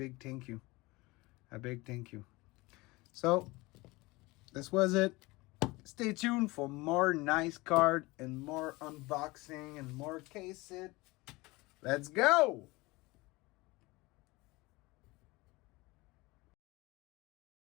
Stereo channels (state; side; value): quieter; right; 22.4 dB